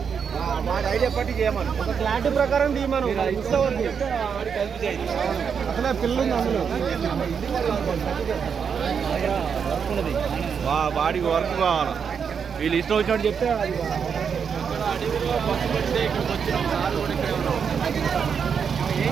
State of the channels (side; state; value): left; quieter; 6.7 dB